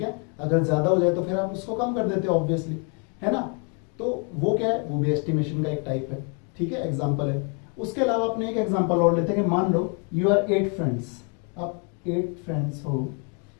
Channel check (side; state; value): right; quieter; 37.0 dB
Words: है। अगर ज्यादा हो जाए तो फिर आप उसको कम कर देते हो ऑब्वियसली, है ना। तो वो क्या है, वो भी एस्टिमेशन का एक टाइप है, ठीक है, एग्जांपल है। उसके अलावा अपने एक एग्जांपल और लेते हैं कि मान लो यू आर 8 फ्रेंड्स, आप 8 फ्रेंड्स हो